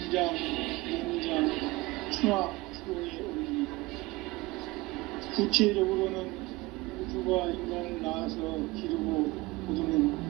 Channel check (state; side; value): quieter; left; 21.7 dB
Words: 농장, 충화, 추동의 원리이다. 구체적으로는 우주가 인간을 낳아서 기르고 거두는